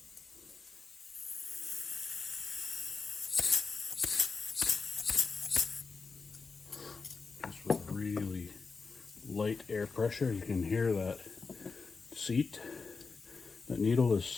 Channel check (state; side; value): quieter; right; 4.6 dB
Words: Just with really light air pressure, you can hear that seat, that needle is